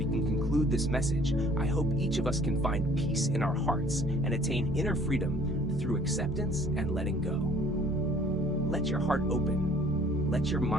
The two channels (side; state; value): right; noise; hum, 20 dB below the sound